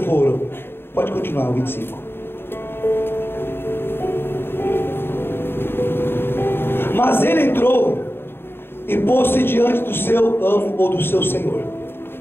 Pode continuar, o 25. Mas ele entrou e pôs-se diante do seu amo ou do seu senhor.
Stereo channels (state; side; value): late; right; 0.11 ms